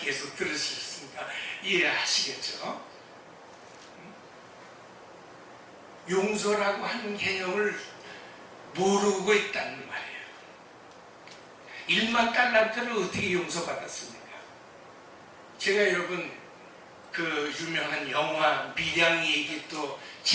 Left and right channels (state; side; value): identical; both; correlation 1.00